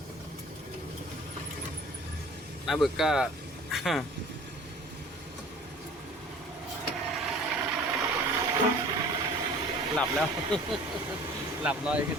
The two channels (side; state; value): both; normal; correlation 0.47